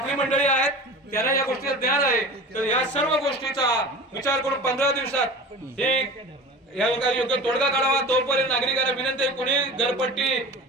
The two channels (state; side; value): normal; both; correlation 0.36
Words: मंडळी आहेत, त्यांना या गोष्टीचं ज्ञान आहे. तर या सर्व गोष्टीचा विचार करून 15 दिवसात हे योग्य तोडगा काढावा. तोपर्यंत नागरिकांना विनंती आहे कोणी घरपट्टी